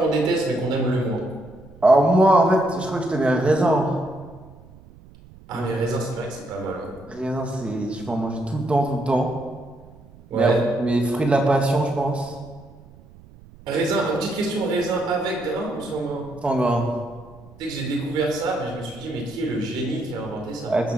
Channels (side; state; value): right; noise; rumble, 22 dB below the sound